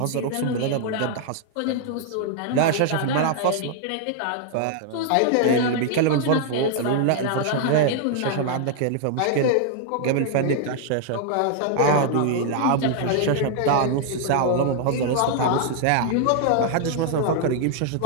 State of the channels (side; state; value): both; different; correlation 0.00